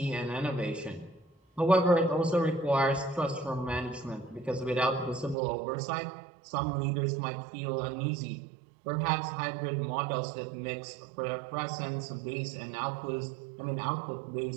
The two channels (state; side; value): drops out; left; at 5.4 s